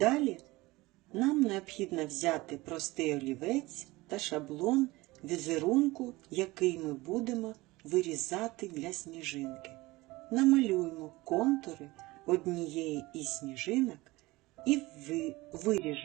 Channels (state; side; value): quieter; left; 20.7 dB